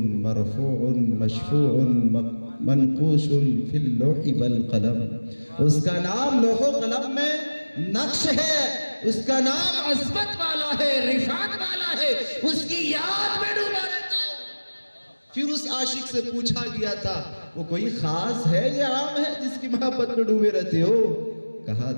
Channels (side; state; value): both; inverted; correlation -1.00